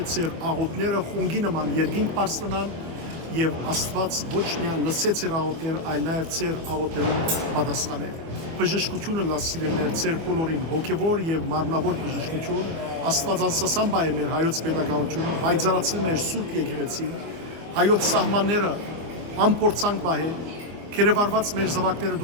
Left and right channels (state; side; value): late; left; 24 ms